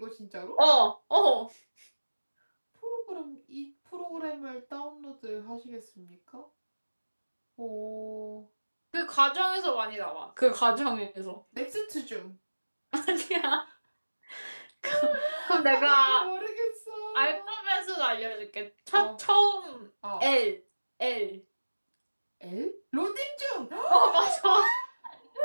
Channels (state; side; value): inverted; both; correlation -1.00